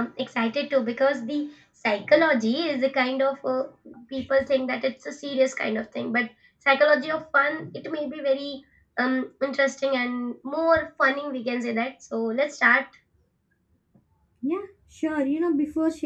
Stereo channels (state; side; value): identical; both; correlation 1.00